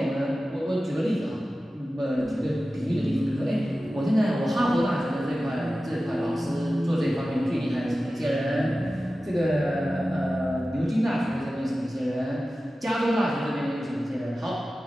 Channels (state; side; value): normal; both; correlation 0.95